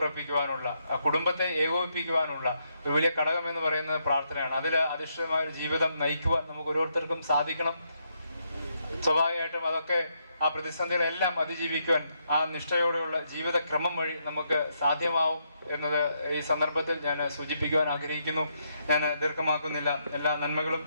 കുടുംബത്തെ ഏകോപിപ്പിക്കുവാനുള്ള ഒരു വലിയ ഘടകം എന്ന് പറയുന്നത് പ്രാർത്ഥനയാണ്. അതിൽ അധിഷ്ഠിതമായ ഒരു ജീവിതം നയിക്കുവാൻ നമുക്ക് ഓരോരുത്തർക്കും സാധിക്കണം. സ്വാഭാവികമായിട്ടും അതൊക്കെ ആ പ്രതിസന്ധികളെല്ലാം അതിജീവിക്കുവാൻ ആ നിഷ്ഠയോടെയുള്ള ജീവിതക്രമം വഴി നമുക്ക് സാധ്യമാവും എന്നത് ഈ സന്ദർഭത്തിൽ ഞാൻ സൂചിപ്പിക്കുവാൻ ആഗ്രഹിക്കുന്നു. ഞാൻ ദീർഘമാക്കുന്നില്ല. എല്ലാ നന്മകളും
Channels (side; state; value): both; inverted; correlation -0.77